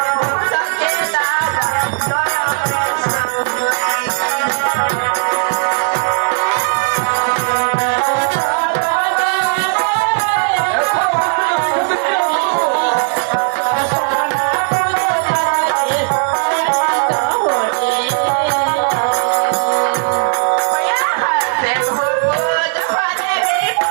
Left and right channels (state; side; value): silent; left; digital silence